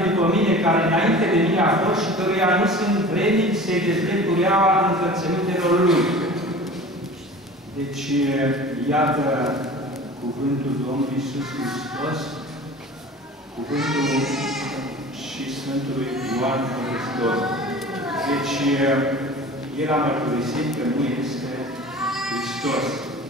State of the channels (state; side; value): normal; both; correlation 0.40